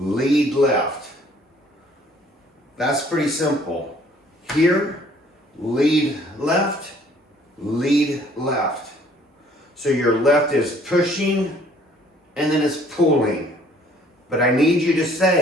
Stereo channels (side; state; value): both; normal; correlation 0.58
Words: left. That's pretty simple. Here, lead left, lead left. So your left is pushing and then it's pulling. But I need you to